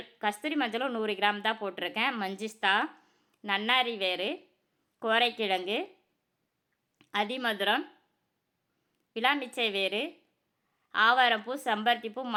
மஞ்சளும் 100 கிராம் தான் போட்டிருக்கேன். மஞ்சிஸ்தா, நன்னாரி வேறு, கோரைக்கிழங்கு, அதிமதுரம், விளாமிச்சை வேறு, ஆவாரம்பூ, செம்பருத்திப்பூ,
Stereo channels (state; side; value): identical; both; correlation 1.00